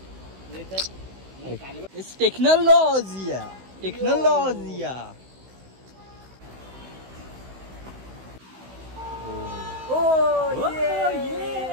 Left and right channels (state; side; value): late; left; 16 ms